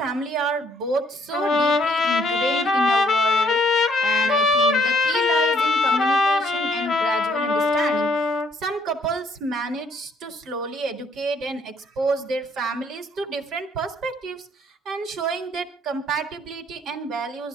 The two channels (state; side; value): normal; both; correlation 0.66